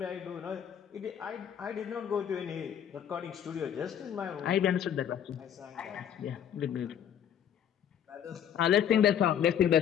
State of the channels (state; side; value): quieter; right; 9.2 dB